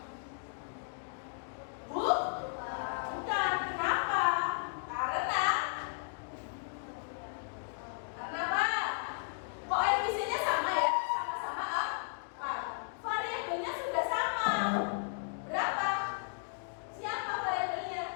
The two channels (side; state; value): right; silent; digital silence